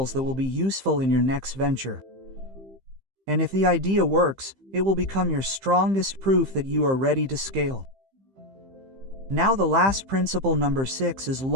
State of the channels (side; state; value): left; late; 15 ms